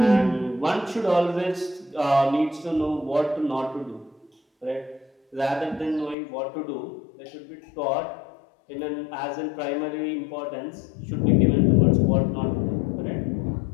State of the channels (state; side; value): drops out; right; at 6.2 s